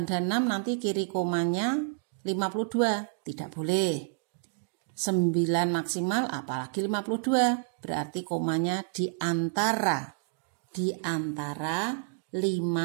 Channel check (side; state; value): left; silent; digital silence